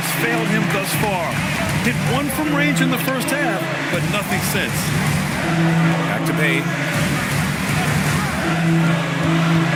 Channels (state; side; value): identical; both; correlation 1.00